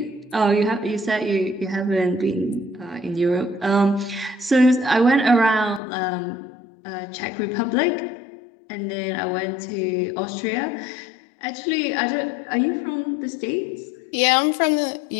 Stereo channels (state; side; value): drops out; right; at 5.8 s